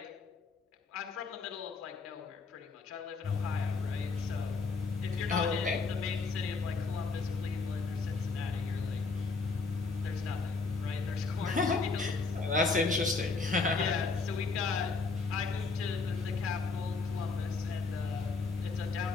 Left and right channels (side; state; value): right; quieter; 4.2 dB